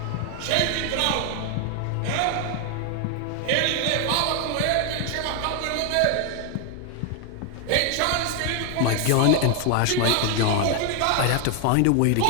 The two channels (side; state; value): both; different; correlation 0.00